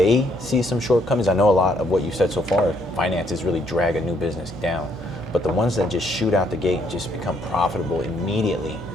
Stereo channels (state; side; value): noise; right; hum, 16 dB below the sound